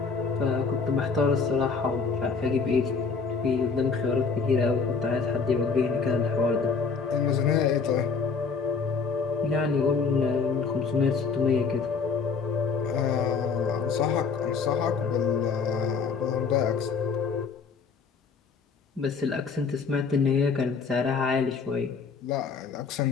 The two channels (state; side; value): quieter; right; 5.2 dB